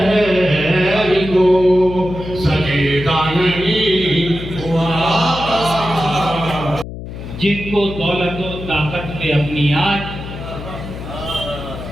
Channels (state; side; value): noise; left; hum, 10 dB below the sound